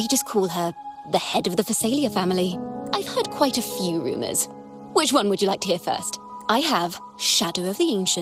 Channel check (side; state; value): both; identical; correlation 1.00